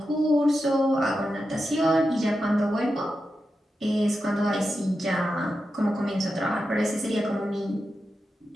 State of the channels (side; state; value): both; normal; correlation 0.89